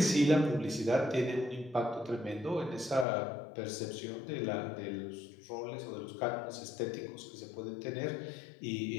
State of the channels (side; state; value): right; drops out; at 3.1 s